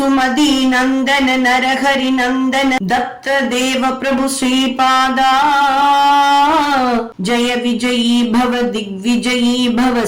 नंदन नरहरि नंदन दत्त देव प्रभु श्रीपादा जय विजयी भव दिग्विजयी भव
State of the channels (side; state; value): both; identical; correlation 1.00